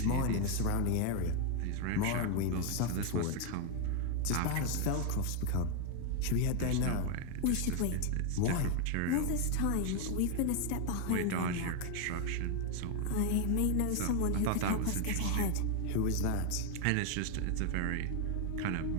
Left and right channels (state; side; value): different; both; correlation 0.01